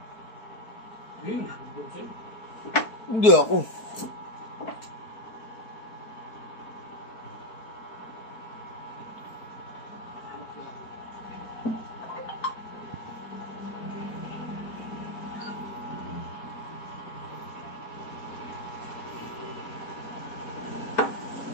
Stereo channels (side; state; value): right; late; 4.6 ms